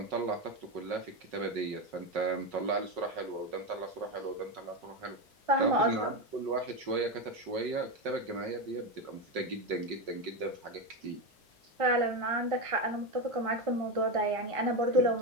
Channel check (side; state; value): both; normal; correlation 0.13